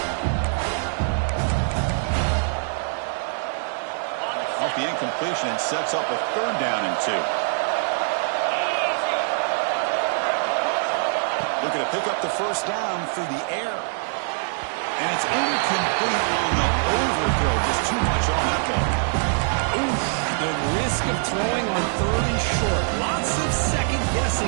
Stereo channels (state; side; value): silent; left; 63 dB below the other